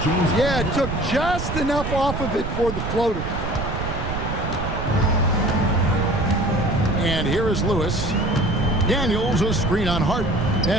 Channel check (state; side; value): noise; right; rumble, 5 dB below the sound